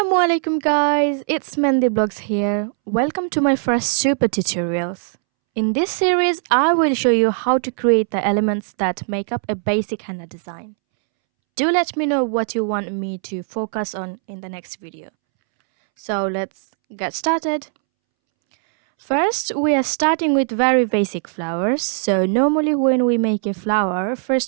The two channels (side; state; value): left; silent; 66 dB below the other